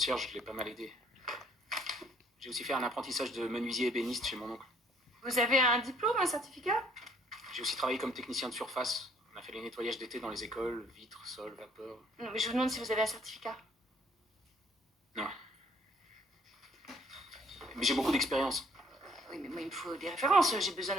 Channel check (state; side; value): normal; both; correlation 0.62